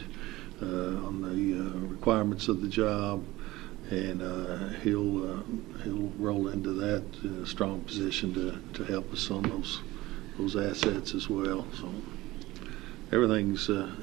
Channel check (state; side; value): quieter; left; 18.6 dB